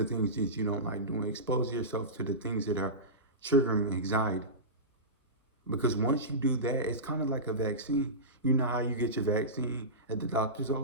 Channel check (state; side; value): normal; both; correlation -0.19